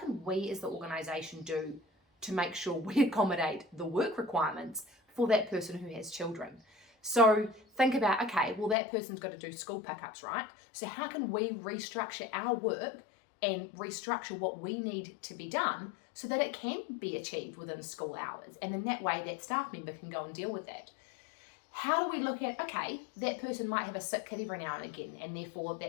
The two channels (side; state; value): right; drops out; at 8.8 s